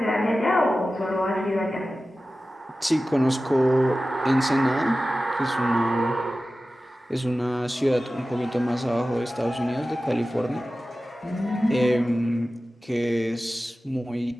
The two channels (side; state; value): both; normal; correlation 0.95